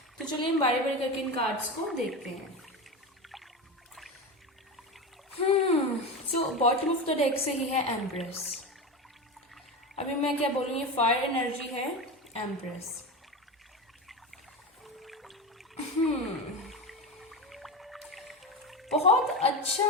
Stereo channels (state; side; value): normal; both; correlation 0.22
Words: तो चलिए हम बारी बारी करके इन कार्ड्स को देखते हैं। So bottom of the deck से ही है एम्प्रेस। अभी मैं क्या बोलूँ, ये फायर एनर्जी है एम्प्रेस। बहुत अच्छा